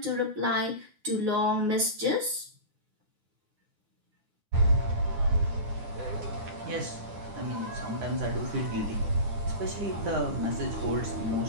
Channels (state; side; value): late; left; 9.5 ms